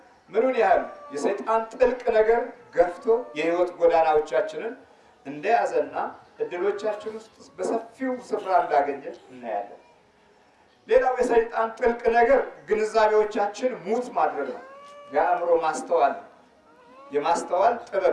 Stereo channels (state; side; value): identical; both; correlation 1.00